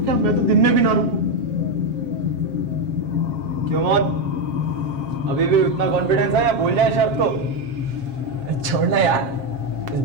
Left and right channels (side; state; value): left; late; 7.5 ms